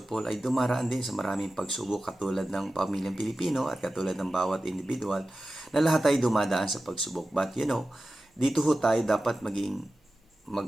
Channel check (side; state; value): both; normal; correlation 0.94